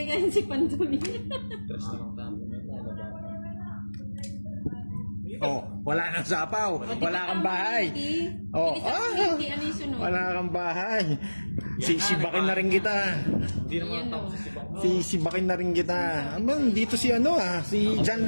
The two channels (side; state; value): both; inverted; correlation -1.00